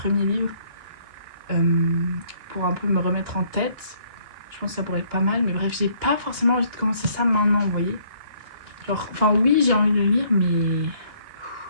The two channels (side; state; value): left; late; 2.9 ms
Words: livres pour un peu me remettre en tête. Je pense que ça pourrait être pas mal, mais bref j'ai pas forcément envie de commencer ça maintenant, vous voyez. Genre, enfin oui j'ai envie de le lire mais